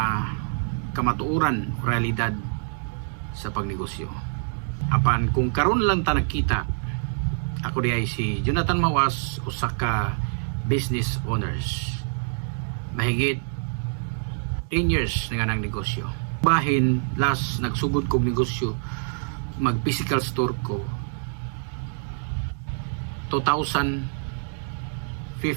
kamatuoran o realidad sa pagnegosyo. Apan kung karon lang ta nakita, ako di ay si Jonathan Mawas, usa ka business owners. Mahigit 10 years na nga ng negosyo. Bahin, last nagsugod kong negosyo, mag physical store ko 2015.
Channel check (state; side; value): silent; left; digital silence